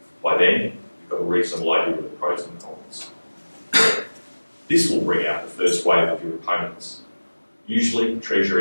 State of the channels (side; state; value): both; inverted; correlation -1.00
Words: By then, you've got a reasonable idea of the pros and cons. This will bring out the first wave of your opponents, usually